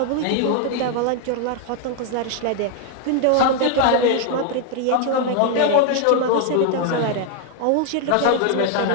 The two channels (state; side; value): different; both; correlation 0.00